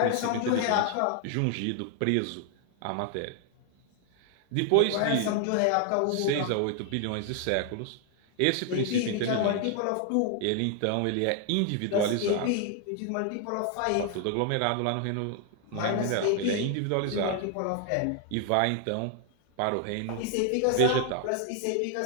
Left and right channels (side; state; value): both; different; correlation 0.00